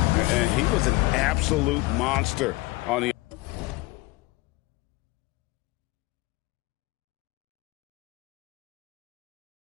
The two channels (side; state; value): right; quieter; 21.6 dB